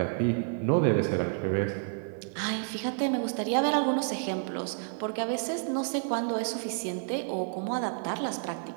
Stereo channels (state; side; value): silent; left; digital silence